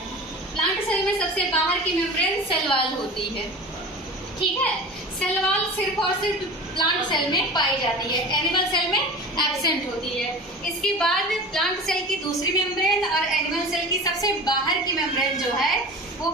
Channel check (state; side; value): normal; both; correlation 0.35